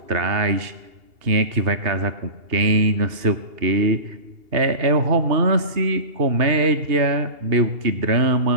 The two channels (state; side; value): late; left; 2.8 ms